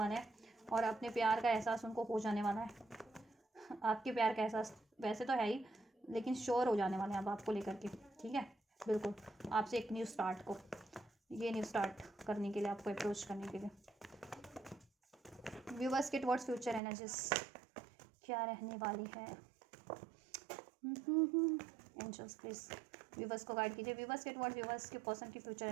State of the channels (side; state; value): left; drops out; at 16.8 s